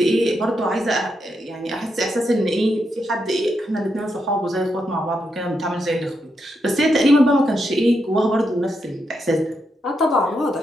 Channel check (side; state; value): both; normal; correlation 0.82